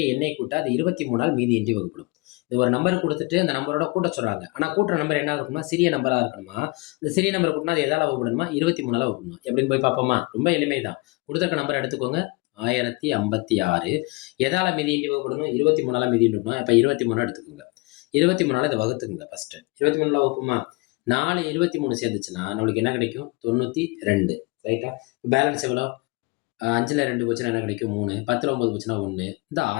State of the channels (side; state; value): right; quieter; 25.4 dB